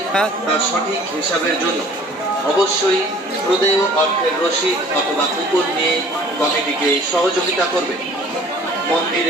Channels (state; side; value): normal; both; correlation 0.51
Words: তার সঠিক হিসাবের জন্য অবশ্যই প্রদেয় অর্থের রসিদ অথবা কুপন নিয়ে কমিটিকে সহযোগিতা করবে।